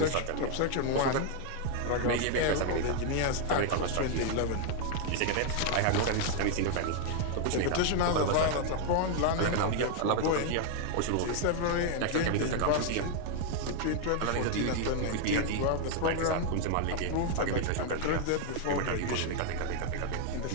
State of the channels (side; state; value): both; different; correlation 0.01